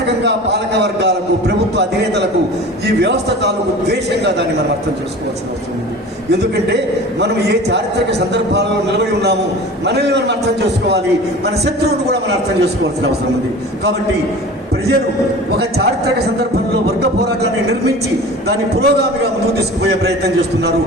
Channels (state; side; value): normal; both; correlation 0.38